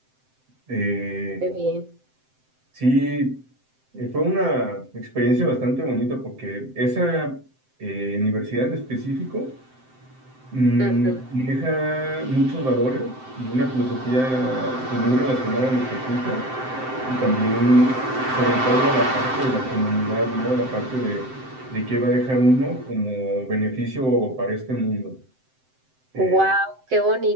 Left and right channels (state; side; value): late; left; 7.7 ms